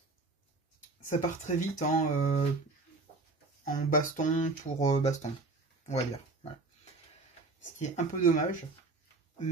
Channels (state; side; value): quieter; left; 3.5 dB